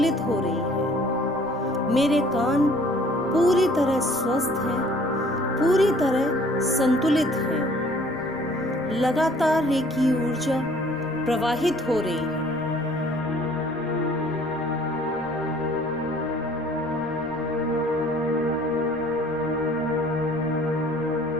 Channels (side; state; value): right; noise; rumble, 22 dB below the sound